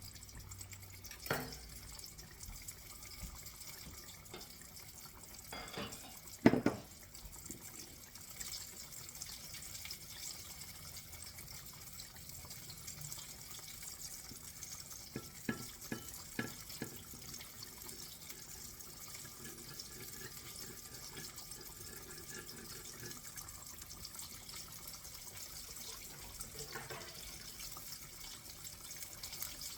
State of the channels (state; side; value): identical; both; correlation 1.00